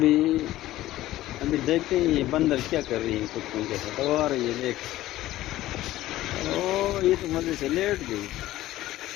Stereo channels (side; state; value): right; quieter; 15.4 dB